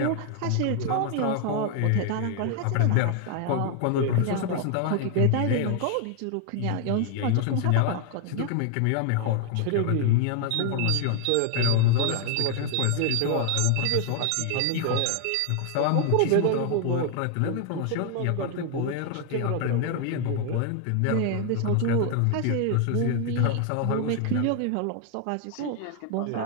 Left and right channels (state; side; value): different; both; correlation 0.00